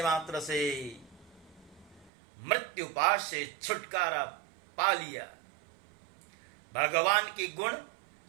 मात्र से मृत्युपाश से छुटकारा पा लिया। भगवान की गुण,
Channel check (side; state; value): left; drops out; at 2.1 s